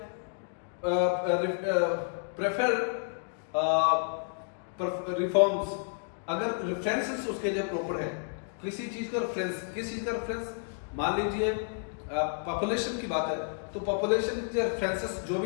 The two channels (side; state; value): right; silent; digital silence